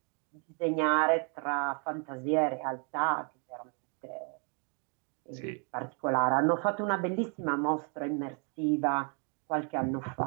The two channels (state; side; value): quieter; left; 39.0 dB